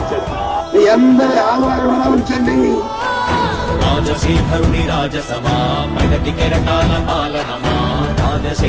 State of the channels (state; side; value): identical; both; correlation 1.00